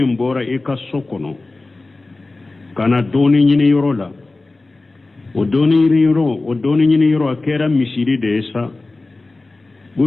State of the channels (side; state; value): right; quieter; 3.3 dB